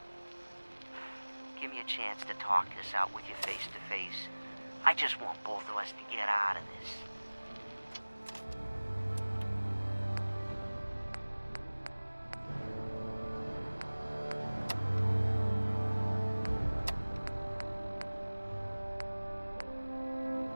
Give me a chance to talk this out with you face to face. I just want both of us to get out of this.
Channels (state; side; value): inverted; both; correlation -1.00